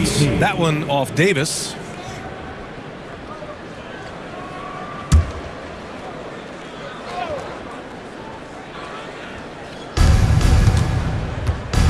That one off Davis.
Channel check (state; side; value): identical; both; correlation 1.00